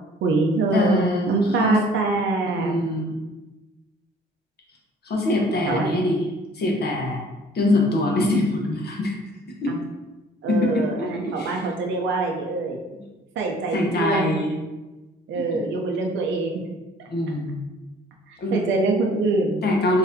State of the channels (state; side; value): normal; both; correlation 0.54